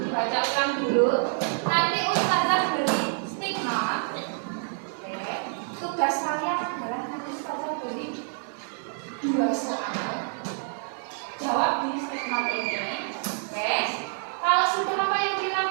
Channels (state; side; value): silent; left; 60 dB below the other